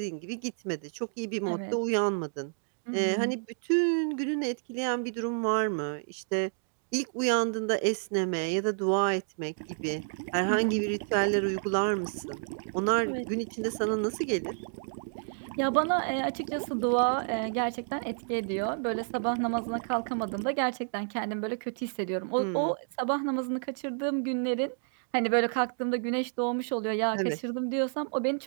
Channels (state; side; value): silent; left; digital silence